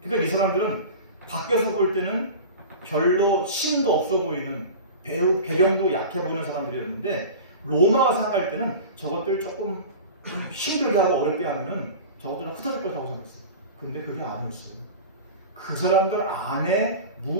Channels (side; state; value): both; inverted; correlation -0.34